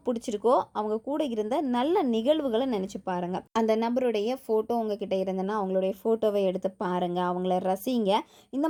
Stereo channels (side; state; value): both; identical; correlation 1.00